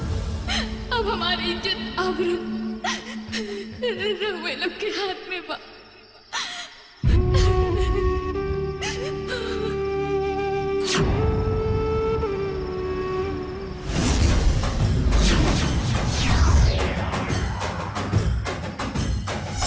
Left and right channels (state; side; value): identical; both; correlation 1.00